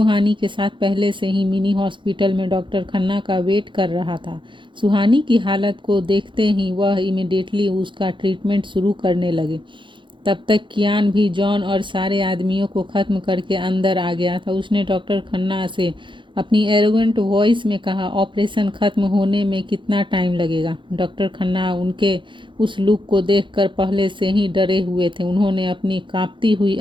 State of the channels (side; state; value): left; late; 0.23 ms